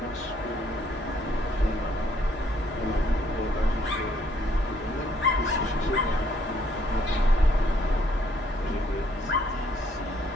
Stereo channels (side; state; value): both; normal; correlation 0.67